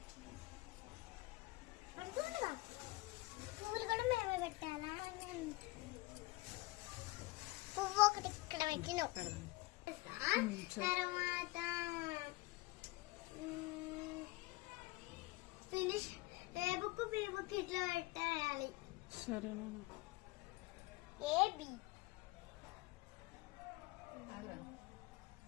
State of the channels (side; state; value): right; quieter; 21.7 dB